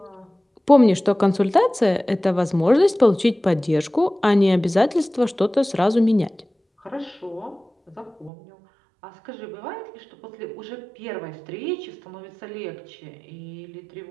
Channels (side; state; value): left; drops out; at 8.3 s